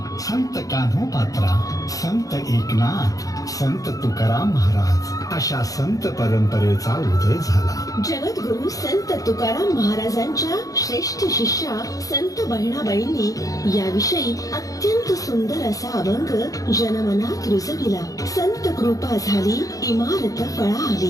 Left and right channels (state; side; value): late; right; 0.17 ms